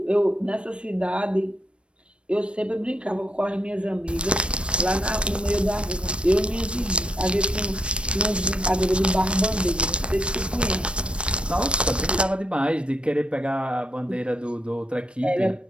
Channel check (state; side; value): late; left; 0.058 ms